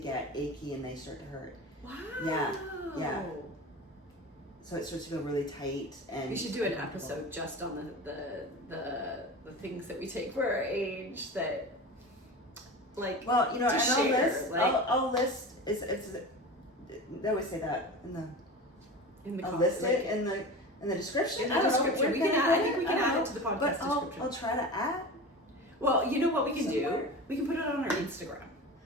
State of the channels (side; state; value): both; normal; correlation 0.30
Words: achy and they start to hurt. Wow. Yeah. So it starts to feel really tight, and We should do an episode just on the things that we take for our age that, like. Well, you know, to and share, I'll list. It's they always say that I'll list it in the description. In the I don't know, description, where we can I add. I think we can add it to the podcast But description. I'll try to add. Well, you know what we can do? Somewhere. We can put it on our Instagram.